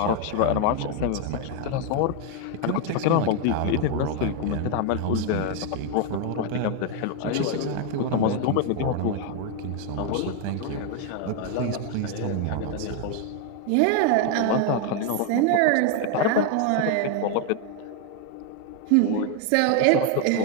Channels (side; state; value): both; different; correlation 0.01